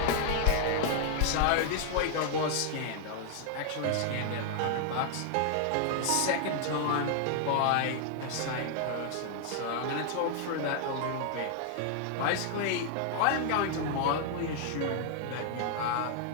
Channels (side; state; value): both; different; correlation 0.00